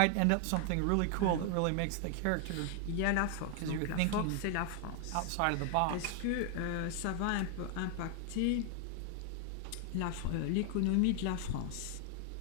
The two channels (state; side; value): different; both; correlation 0.00